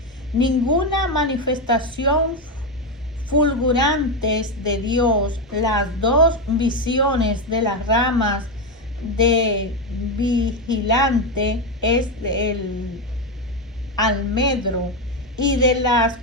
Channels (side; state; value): both; normal; correlation 0.09